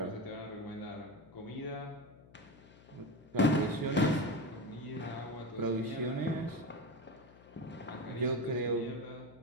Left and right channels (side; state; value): left; noise; hum, 22 dB below the sound